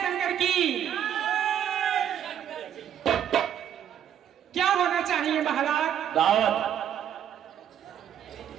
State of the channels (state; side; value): quieter; left; 9.7 dB